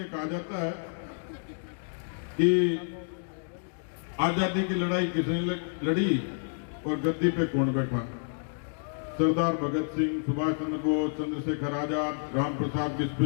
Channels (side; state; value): right; silent; digital silence